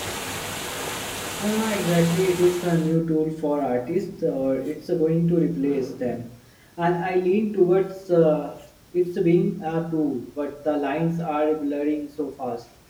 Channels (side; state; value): both; identical; correlation 1.00